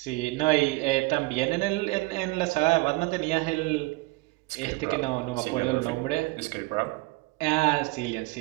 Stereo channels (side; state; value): left; quieter; 23.0 dB